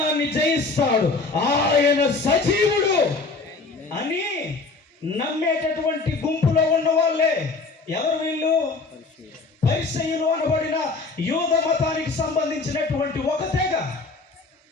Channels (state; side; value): quieter; right; 3.9 dB